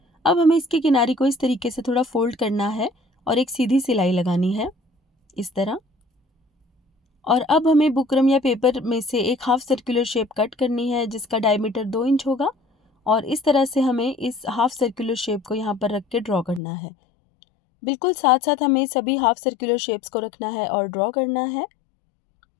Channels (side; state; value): right; drops out; at 16.6 s